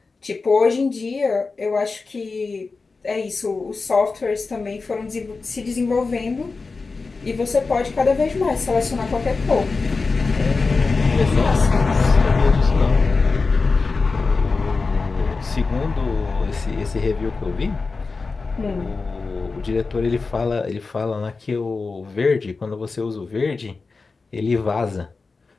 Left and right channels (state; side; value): quieter; right; 4.1 dB